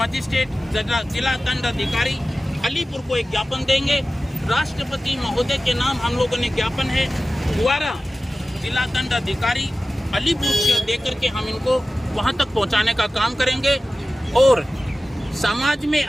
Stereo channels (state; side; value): normal; both; correlation 0.95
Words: जिला दंड अधिकारी अलीपुर को एक ज्ञापन देंगे। राष्ट्रपति महोदय के नाम हम लोगों ने ज्ञापन है द्वारा जिला दंड अधिकारी अलीपुर से देकर के हम इनको वहाँ तक पहुँचाने का काम करेंगे। और समाज में